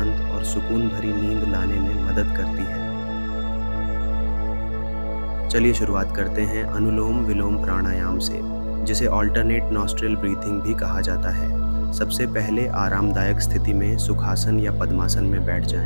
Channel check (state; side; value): inverted; both; correlation -1.00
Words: और सुकून भरी नींद लाने में मदद करती है। चलिए शुरुआत करते हैं अनुलोम विलोम प्राणायाम से, जिसे ऑल्टरनेट नॉस्ट्रिल ब्रीथिंग भी कहा जाता है। सबसे पहले आरामदायक स्थिति में सुखासन या पद्मासन में बैठ